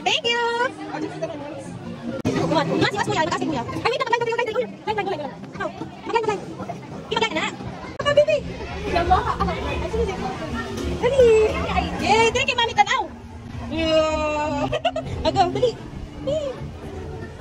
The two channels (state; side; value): identical; both; correlation 1.00